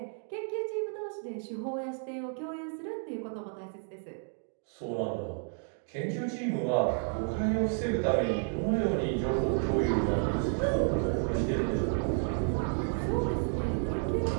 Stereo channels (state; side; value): silent; left; 57 dB below the other